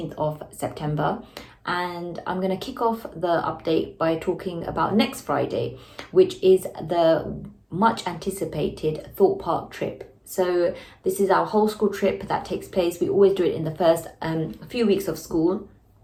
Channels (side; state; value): both; identical; correlation 1.00